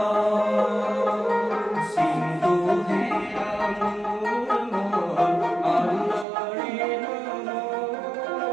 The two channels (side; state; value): left; drops out; at 6.2 s